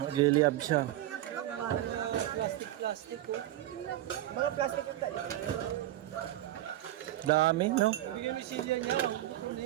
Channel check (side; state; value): left; quieter; 14.0 dB